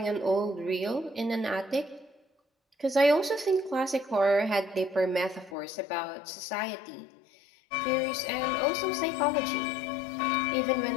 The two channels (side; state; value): right; drops out; at 5.6 s